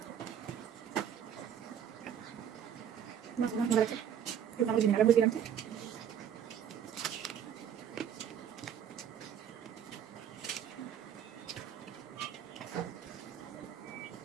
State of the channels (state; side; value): quieter; left; 8.9 dB